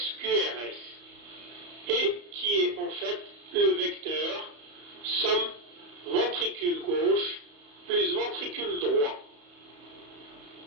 QRS. Et qui est en fait le vecteur somme ventricule gauche plus ventricule droit.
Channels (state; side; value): late; left; 34 ms